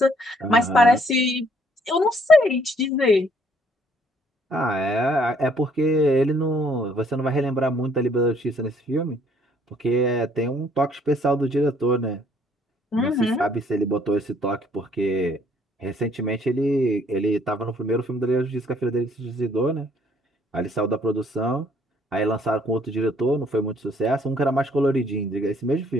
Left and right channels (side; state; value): both; normal; correlation 0.64